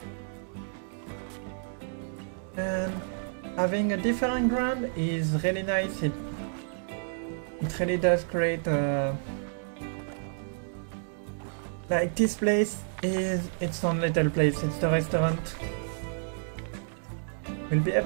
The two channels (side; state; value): left; silent; digital silence